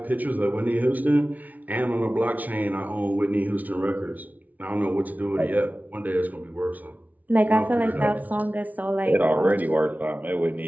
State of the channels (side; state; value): left; late; 0.075 ms